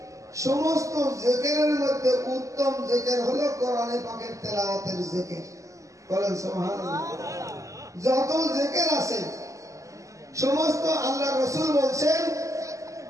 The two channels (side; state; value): left; late; 0.16 ms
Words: সমস্ত জিকিরের মধ্যে উত্তম জিকির হলো কোরআনে পাকের তেলাওয়াতের জিকির। বলেন সুবহানাল্লাহ। যত জিকির আছে সমস্ত, আল্লাহ রাসূল বলছেন